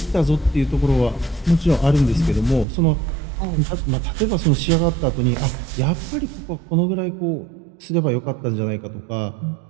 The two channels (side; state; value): left; drops out; at 2.7 s